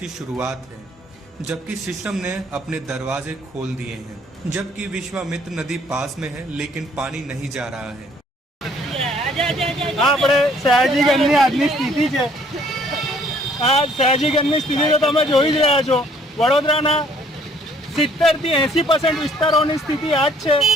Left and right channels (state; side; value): normal; both; correlation 0.61